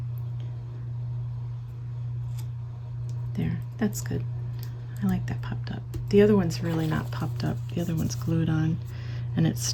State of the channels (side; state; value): both; identical; correlation 1.00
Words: There, that's good. I like that popped up. The other one's really not popped up. The other one's glued on and it's